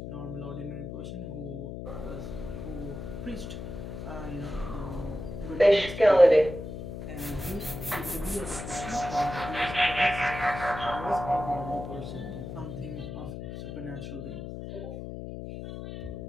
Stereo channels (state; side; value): noise; left; hum, 8 dB below the sound